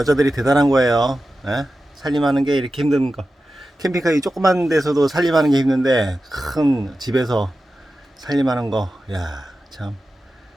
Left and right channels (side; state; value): both; normal; correlation 0.93